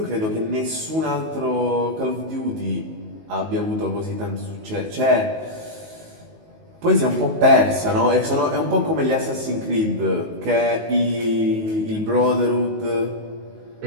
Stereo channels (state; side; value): late; left; 19 ms